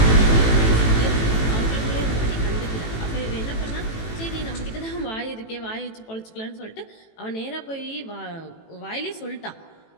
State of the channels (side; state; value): right; late; 18 ms